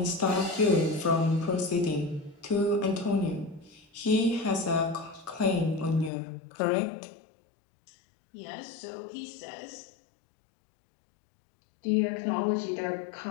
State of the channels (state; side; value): drops out; right; at 6.1 s